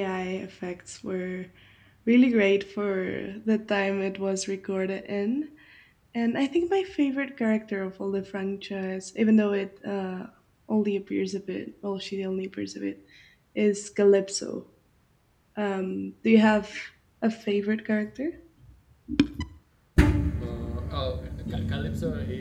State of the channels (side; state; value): both; identical; correlation 1.00